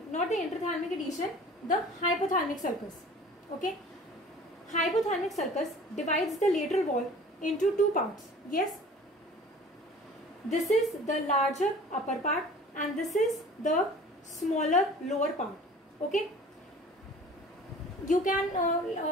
not the interthalamic adhesion, the hypothalamic sulcus. Okay. Hypothalamic sulcus divides the lateral wall into 2 parts. Yes. This is the larger upper part and this is the smaller lower part. Okay. You can,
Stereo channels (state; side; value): normal; both; correlation 0.45